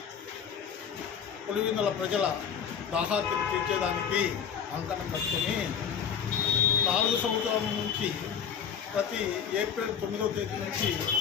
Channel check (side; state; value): right; quieter; 7.5 dB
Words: పులివెందుల ప్రజల దాహార్తిని తీర్చేదానికి అంకణం కట్టుకొని 4 సంవత్సరాల నుంచి ప్రతి ఏప్రిల్ 9వ తేదీ నుంచి